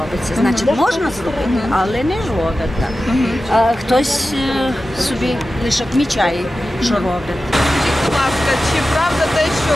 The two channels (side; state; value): both; normal; correlation 0.94